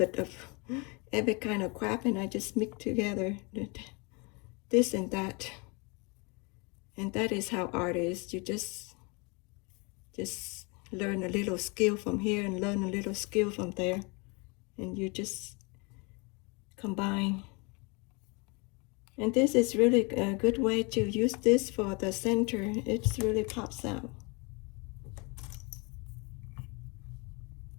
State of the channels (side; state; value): right; quieter; 30.5 dB